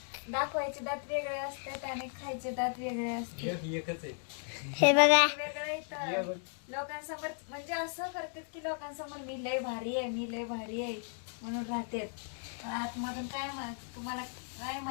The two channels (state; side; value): silent; right; 54 dB below the other